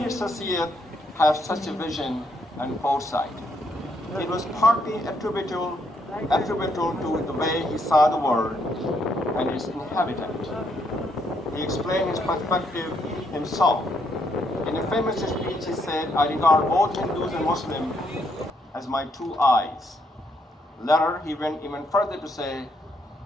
Sir Syed have such a vision and foresight? It was partly attributable to the way he saw the world and its inhabitant. He explained his perspective himself. In a famous speech, he said, I regard both Hindus and Muslims as my two eyes. Later, he went even further to say,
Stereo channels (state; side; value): normal; both; correlation 0.74